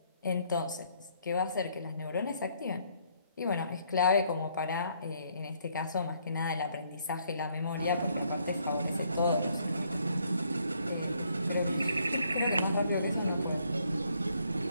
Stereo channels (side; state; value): both; inverted; correlation -0.68